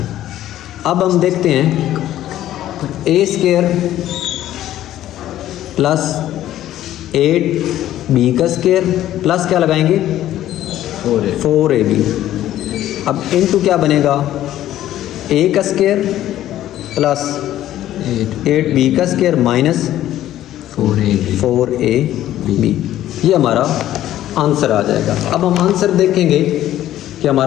अब हम देखते हैं a स्क्वायर प्लस 8b का स्क्वायर प्लस क्या लगाएंगे, 4ab अब इनटू क्या बनेगा, ए का स्क्वायर प्लस 8b का स्क्वायर माइनस 4ab, ये हमारा आंसर आ जाएगा। अब हम आंसर देखेंगे कि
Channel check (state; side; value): quieter; right; 13.0 dB